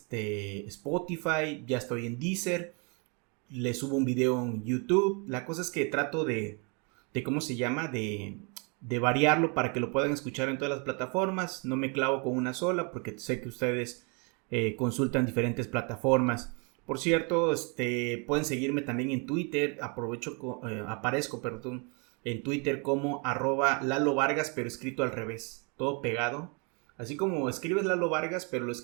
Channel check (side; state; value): left; quieter; 33.9 dB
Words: Ya estoy en Deezer, le subo un video en YouTube. La cosa es que trato de ¿cómo se llama? De variarlo para que lo puedan escuchar en todas las plataformas. No me clavo con una sola porque sé que ustedes consultan diferentes plataformas. Por cierto, pueden seguirme también en Twitter. Aparezco en Twitter como @Lalo Vargas, pero escrito al revés, todo pegado. Así como escribes Lalo Vargas, pero lo